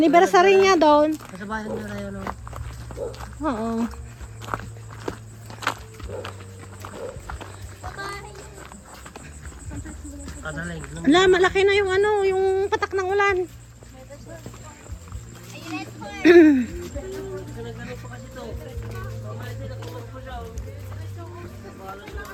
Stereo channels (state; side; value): identical; both; correlation 1.00